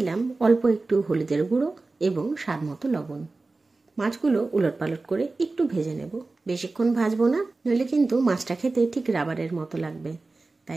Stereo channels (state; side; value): quieter; left; 3.5 dB